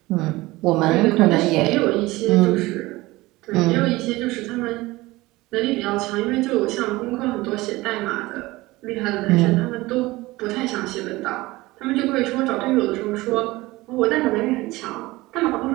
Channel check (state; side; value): quieter; left; 20.0 dB